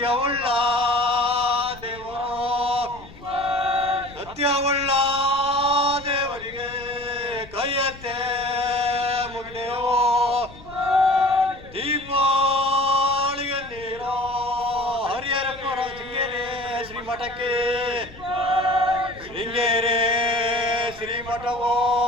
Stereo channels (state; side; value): noise; left; rumble, 19 dB below the sound